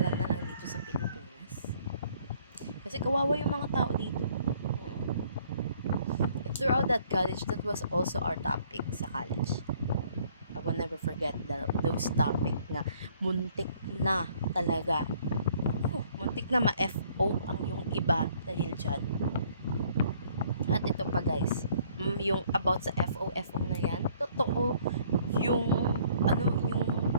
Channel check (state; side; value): inverted; both; correlation -0.61